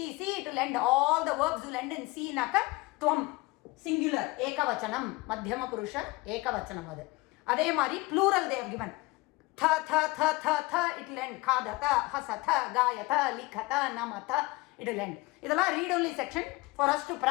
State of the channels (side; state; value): right; quieter; 22.9 dB